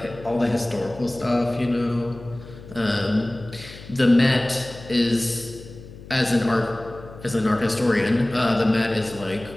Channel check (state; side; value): noise; left; hum, 17 dB below the sound